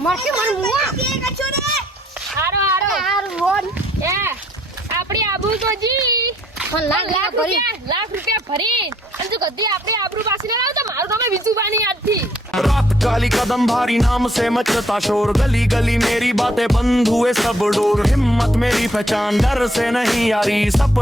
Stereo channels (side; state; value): both; normal; correlation 0.66